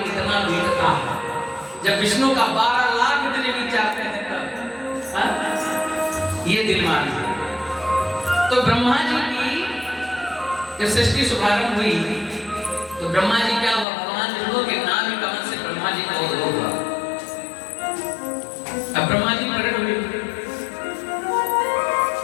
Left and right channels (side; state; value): right; drops out; at 13.9 s